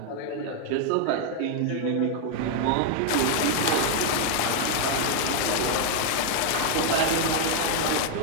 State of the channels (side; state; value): both; different; correlation 0.00